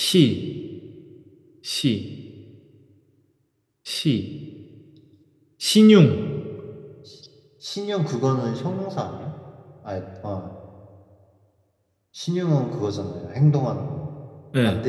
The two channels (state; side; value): identical; both; correlation 1.00